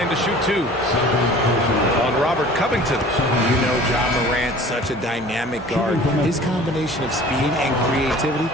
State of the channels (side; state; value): both; normal; correlation 0.46